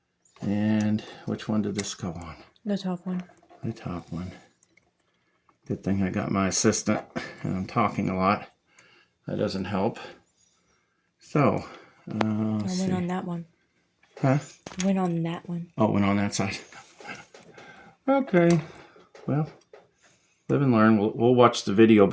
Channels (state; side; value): identical; both; correlation 1.00